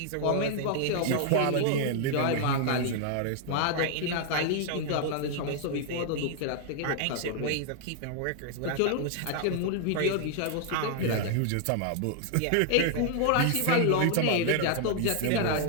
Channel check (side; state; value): both; different; correlation -0.01